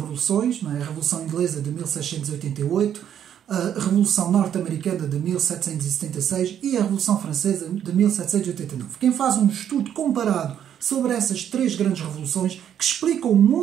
não é? A Revolução Inglesa de 1688, a Revolução Norte-Americana de 1776 e a Revolução Francesa de 1789. Quem faz um estudo comparado sobre essas três grandes revoluções, que explicam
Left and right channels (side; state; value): left; quieter; 9.5 dB